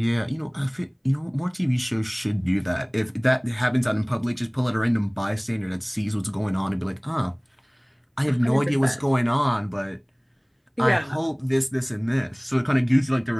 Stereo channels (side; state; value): both; identical; correlation 1.00